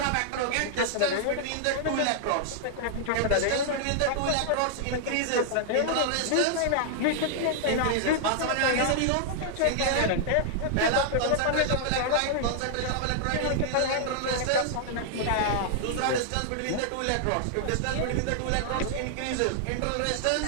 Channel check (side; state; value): both; different; correlation -0.01